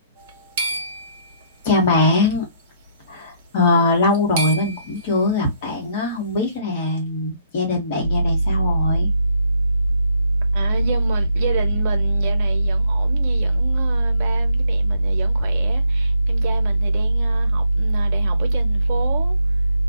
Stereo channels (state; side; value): inverted; both; correlation -0.72